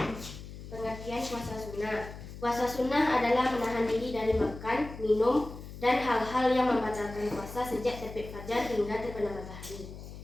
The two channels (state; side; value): noise; left; hum, 13 dB below the sound